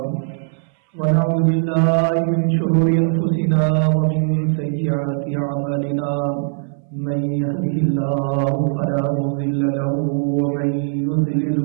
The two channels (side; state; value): left; silent; 62 dB below the other